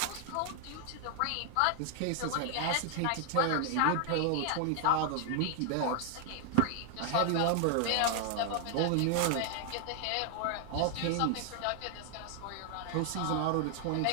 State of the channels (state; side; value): different; both; correlation 0.00